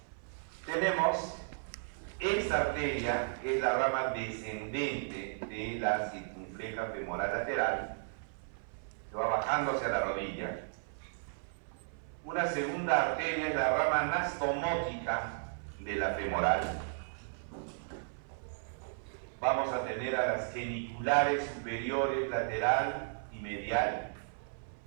Tenemos esta arteria, que es la rama descendente de la circunfleja femoral lateral, que va bajando hacia la rodilla. Una segunda arteria es la rama anastomótica de la femoral. Vamos a tener a las geniculares superiores, lateral y medial.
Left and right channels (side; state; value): left; silent; 55 dB below the other